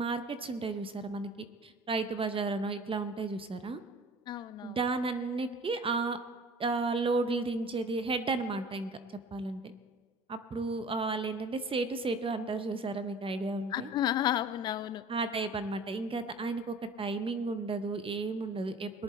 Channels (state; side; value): normal; both; correlation 0.44